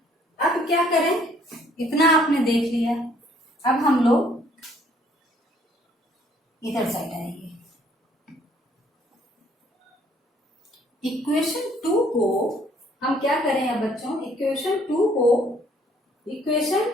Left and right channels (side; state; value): both; normal; correlation 0.62